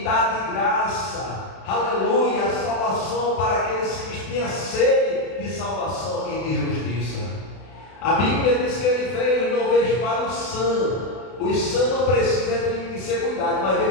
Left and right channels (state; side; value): late; right; 32 ms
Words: dar de graça, aleluia, a salvação para aqueles que tinham sede de salvação e de justiça. A Bíblia diz que ele veio e não veio para os sãos. Os sãos não precisam de ser cuidados, mas veio